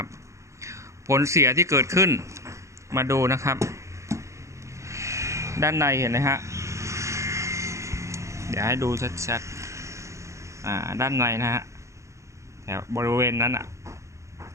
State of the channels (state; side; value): late; left; 0.14 ms